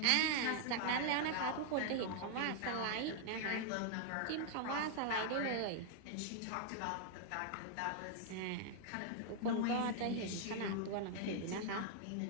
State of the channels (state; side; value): different; both; correlation 0.00